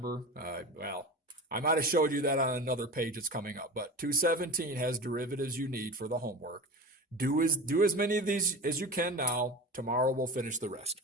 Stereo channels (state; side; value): normal; both; correlation 0.30